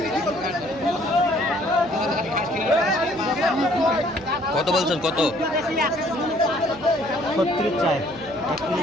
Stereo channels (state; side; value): noise; right; hum, 22 dB below the sound